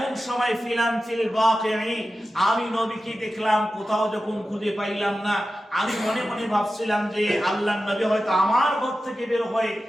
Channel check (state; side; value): normal; both; correlation 0.93